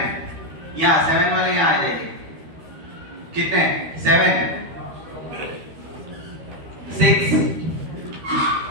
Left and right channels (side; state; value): left; late; 13 ms